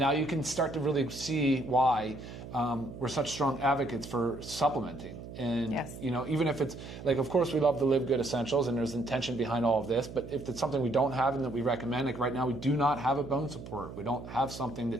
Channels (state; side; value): noise; right; hum, 12 dB below the sound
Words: you can start to really see why we're such strong advocates for supplementing. And, even if it's, like, of course, we love the LiveGood essentials, and there's intention behind all of this, but if it's something we don't have and that we recommend, like right now, we do not have a bone support. We don't have something